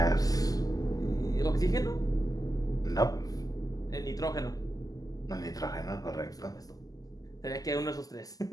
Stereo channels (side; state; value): right; late; 0.17 ms